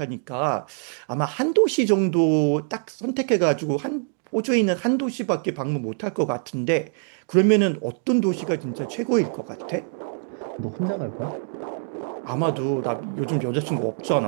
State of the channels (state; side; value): silent; left; 59 dB below the other